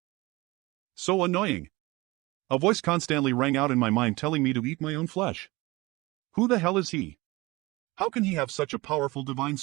So annoying. A voice constantly rang out in my mind telling me to eat my own flesh. Who the hell is he? How can he have such a powerful divine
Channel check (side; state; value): left; quieter; 21.9 dB